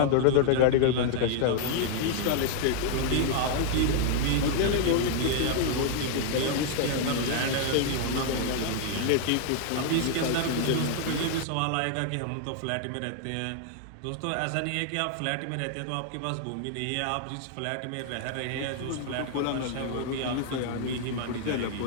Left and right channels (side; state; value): both; different; correlation 0.00